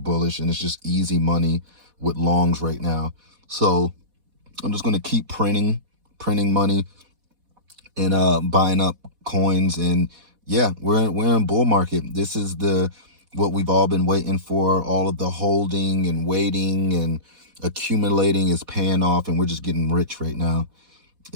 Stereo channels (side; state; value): left; late; 4.1 ms